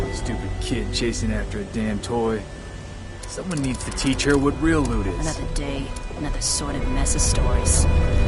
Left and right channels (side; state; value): both; identical; correlation 1.00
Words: Stupid kid chasing after a damn toy. Someone needs to teach her what real loot is. Another day, another sordid mess of stories.